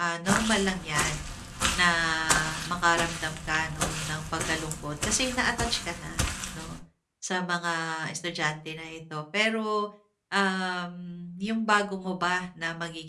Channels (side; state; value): both; identical; correlation 1.00